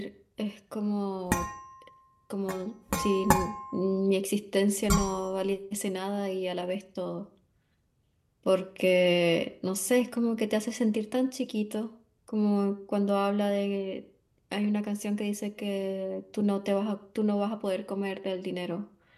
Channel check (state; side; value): identical; both; correlation 1.00